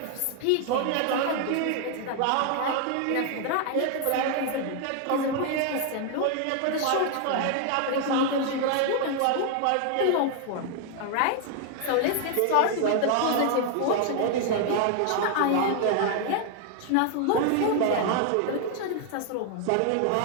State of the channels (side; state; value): both; different; correlation 0.00